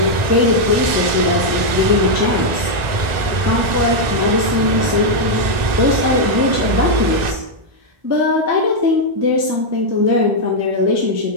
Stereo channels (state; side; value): late; left; 1.9 ms